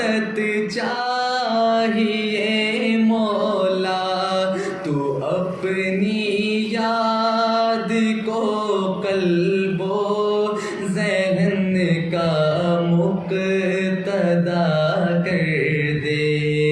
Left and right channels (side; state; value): both; identical; correlation 1.00